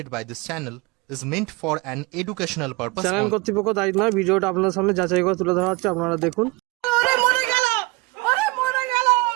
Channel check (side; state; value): left; quieter; 24.9 dB